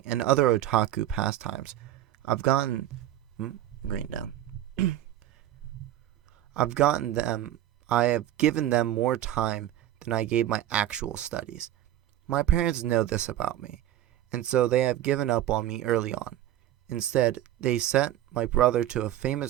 and other otaku pastimes, I've gotten green down. I've gotten them I have given them more time than I gave my actual studies. My parents know this about me, and so they have given up on me early on. Instead, they sent my brother to a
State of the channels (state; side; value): quieter; left; 13.0 dB